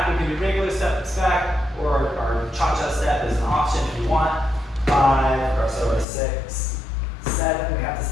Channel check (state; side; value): drops out; right; at 6.1 s